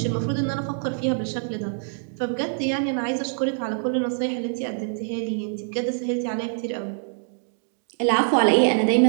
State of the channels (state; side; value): silent; left; digital silence